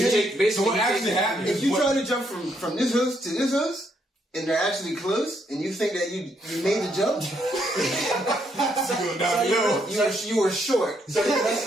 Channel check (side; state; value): both; normal; correlation 0.74